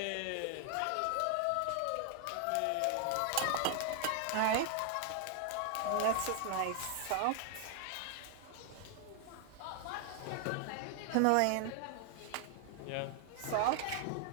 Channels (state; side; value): different; both; correlation 0.00